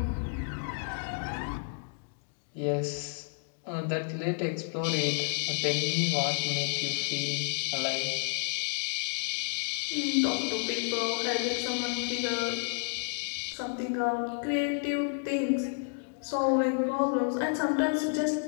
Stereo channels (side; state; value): right; silent; digital silence